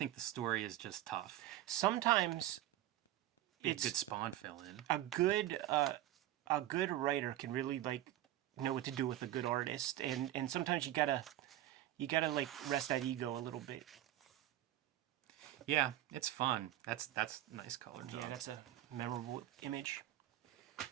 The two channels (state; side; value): quieter; left; 13.8 dB